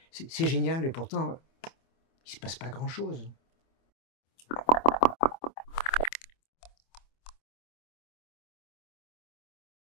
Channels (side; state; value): right; late; 25 ms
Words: C'est génial. Et pourtant, il se passe pas grand-chose.